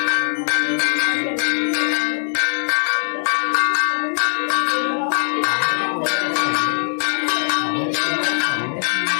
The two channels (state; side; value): silent; right; 66 dB below the other